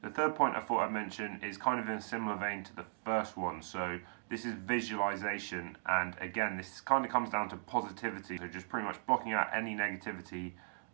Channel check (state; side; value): silent; left; digital silence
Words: third point I thought I'd mention is kind of in a similar vein to the first one. So this is visualization, and again, this kind of comes down to positivity. So just pretty much blocking out any negativity,